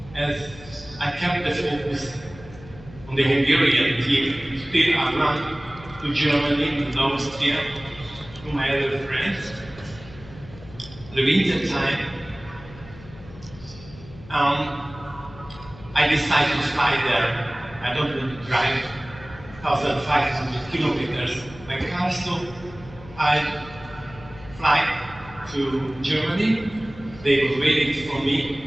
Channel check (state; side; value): noise; left; hum, 18 dB below the sound